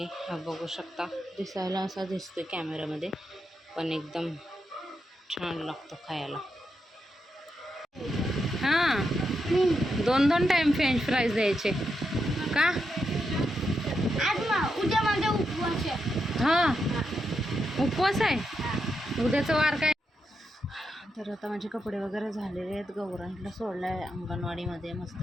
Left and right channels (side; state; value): both; normal; correlation 0.84